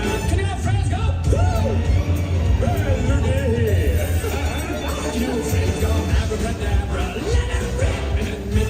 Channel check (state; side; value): identical; both; correlation 1.00